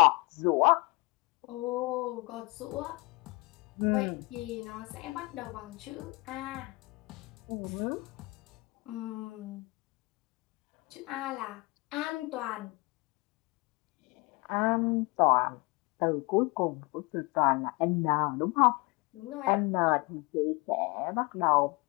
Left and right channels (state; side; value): quieter; right; 26.1 dB